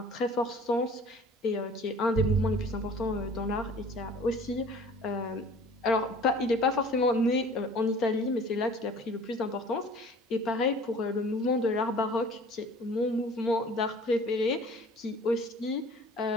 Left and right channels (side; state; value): both; normal; correlation 0.48